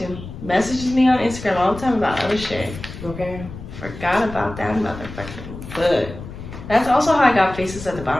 Messages me on Instagram all the time about other shit. Okay. Forgot about that motherfucking book. That's also how I got Faces at the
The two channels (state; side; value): noise; left; rumble, 12 dB below the sound